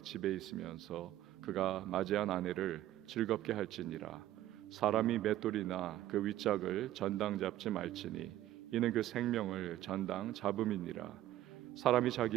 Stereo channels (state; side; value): quieter; left; 13.8 dB